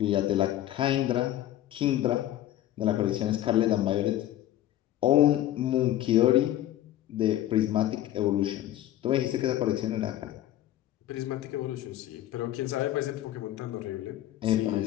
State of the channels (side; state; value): right; quieter; 13.3 dB